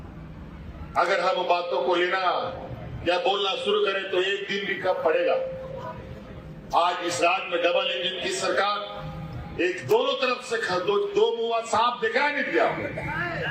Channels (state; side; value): identical; both; correlation 1.00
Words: अगर हम बातों को लेना या बोलना शुरू करें तो एक दिन भी कब पड़ेगा। आज इस राज्य में डबल इंजन की सरकार एक दोनों तरफ से दो मुंह सांप दिखाया नहीं दिया,